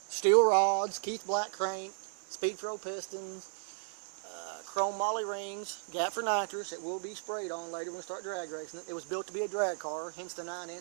Steel rods, Keith Black crank, Speed Pro pistons, chrome moly rings, gap for nitrous. It will be sprayed on later when we start drag racing it. It was built to be a drag car, hence the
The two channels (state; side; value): silent; left; 55 dB below the other